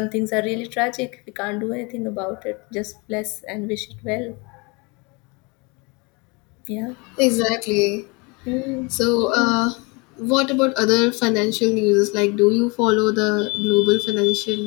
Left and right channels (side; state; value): right; quieter; 28.8 dB